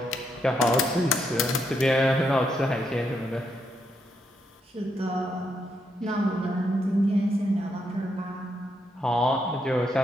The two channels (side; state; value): both; normal; correlation 0.79